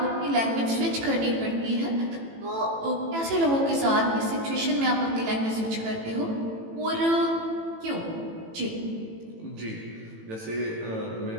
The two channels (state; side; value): late; left; 18 ms